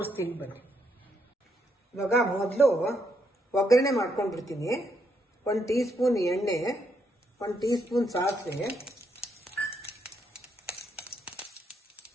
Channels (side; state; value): both; normal; correlation 0.76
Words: ಬನ್ನಿ. ಇವಾಗ ಮೊದಲು ಒಗ್ಗರಣೆ ಮಾಡ್ಕೊಂಡ್ಬಿಡ್ತೀನಿ. 1 ಟೀ ಸ್ಪೂನ್ ಎಣ್ಣೆ, 1 ಟೀ ಸ್ಪೂನ್ ಸಾಸಿವೆ.